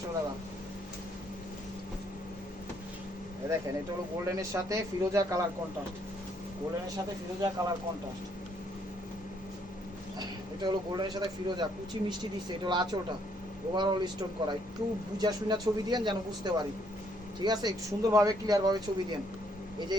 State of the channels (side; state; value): both; normal; correlation 0.69